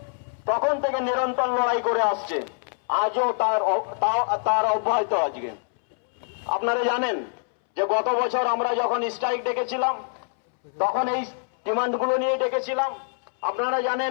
তখন থেকে নিরন্তর লড়াই করে আসছে, আজও তার অব্যাহত। আজকে আপনারা জানেন যে গত বছর আমরা যখন স্ট্রাইক ডেকেছিলাম তখন এই ডিমান্ডগুলো নিয়ে ডেকেছিলাম। আপনারা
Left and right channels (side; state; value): right; silent; 62 dB below the other